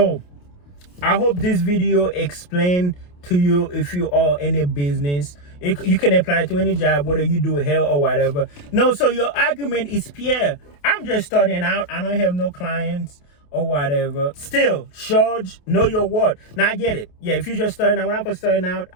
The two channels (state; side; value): late; right; 28 ms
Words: I hope this video explained to you if you are in a business. You can apply to any job, whether you do hair or whatever. No, so your argument is, Pierre, I'm just starting out. I don't have no clients or whatever. Still, charge, know your worth. Now I get it. Yeah, if you're just starting out, when I was starting out,